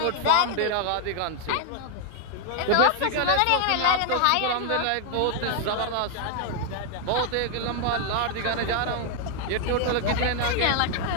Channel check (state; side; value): different; both; correlation 0.00